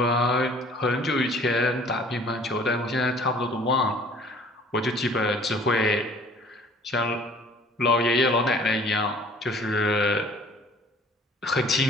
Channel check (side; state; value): both; normal; correlation 0.53